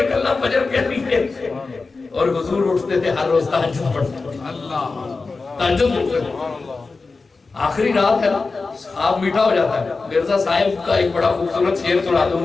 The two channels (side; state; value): right; quieter; 4.0 dB